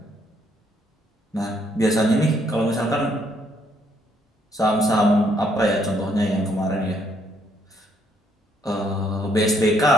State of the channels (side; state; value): both; normal; correlation 0.70